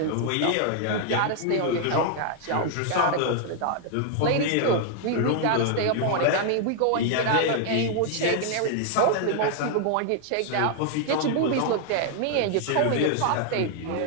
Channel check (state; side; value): different; both; correlation 0.00